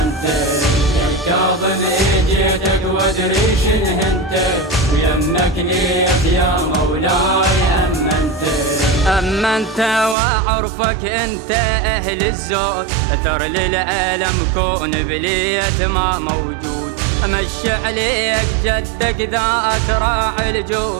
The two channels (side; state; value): left; drops out; at 10.2 s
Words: يا كاظم جيتك وادري شنه انت، ويمك ليت يا مولاي أمنت وعرفك انت اهل الزود، اثر للعالم كون بليت ما موجود. امشي عليك جدك ذاك راعي